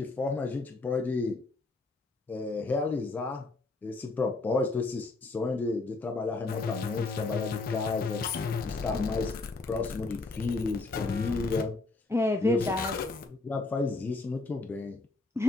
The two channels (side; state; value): right; quieter; 3.4 dB